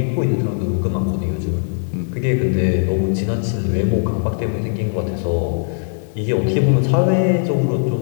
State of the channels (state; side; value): silent; right; digital silence